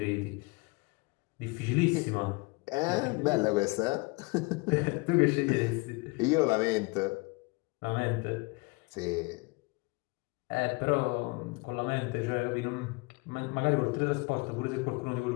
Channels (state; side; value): quieter; right; 27.4 dB